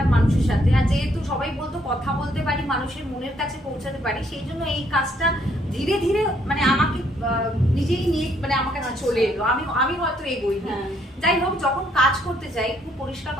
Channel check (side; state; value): both; normal; correlation 0.69